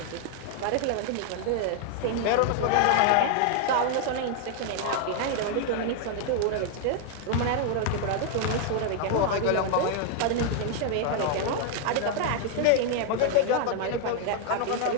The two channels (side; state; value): both; different; correlation 0.00